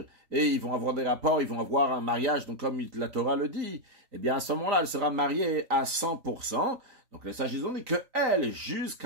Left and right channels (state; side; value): late; left; 3.9 ms